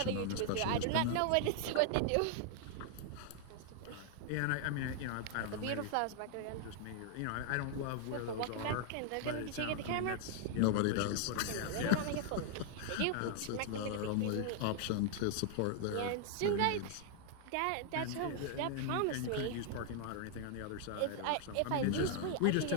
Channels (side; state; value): both; different; correlation 0.00